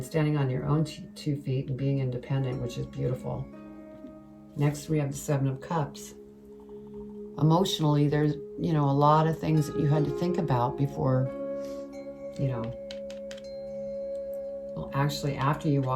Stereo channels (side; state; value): both; identical; correlation 1.00